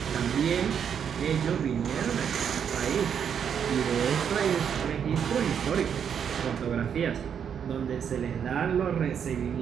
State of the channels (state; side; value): quieter; left; 7.8 dB